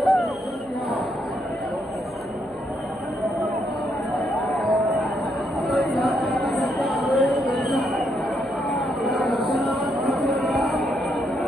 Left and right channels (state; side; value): noise; left; hum, 26 dB below the sound